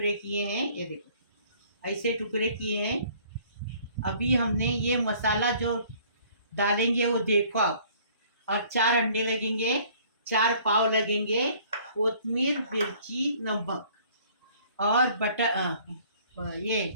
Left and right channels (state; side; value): inverted; both; correlation -0.56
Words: किए हैं, ये देखो ऐसे टुकड़े किए हैं। अभी हमने ये मसाला जो डालेंगे वो देखो आप, और 4 अंडे लगेंगे, 4 पाव लगेंगे, कोतमीर, मिर्ची, नमक और ये